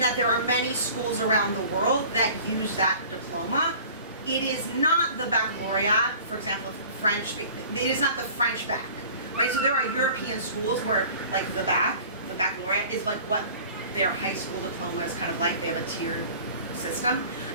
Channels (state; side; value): inverted; both; correlation -0.45